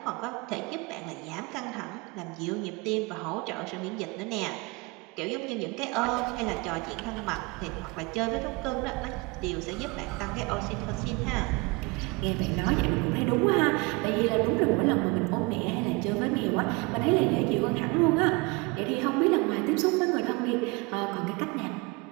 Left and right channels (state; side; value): quieter; left; 26.2 dB